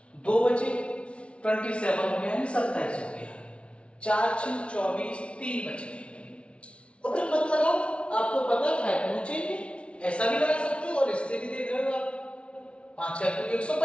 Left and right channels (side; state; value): right; late; 0.060 ms